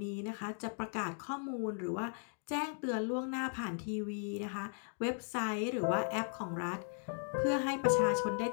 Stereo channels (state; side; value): silent; right; 53 dB below the other